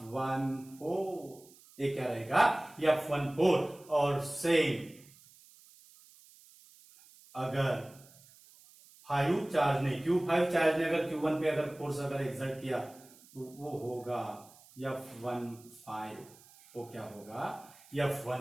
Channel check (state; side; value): noise; right; hiss, 24 dB below the sound